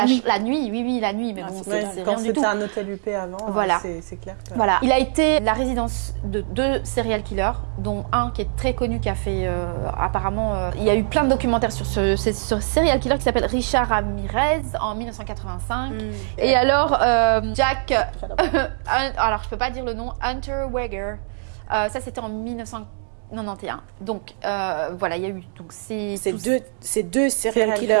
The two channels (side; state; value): left; silent; 64 dB below the other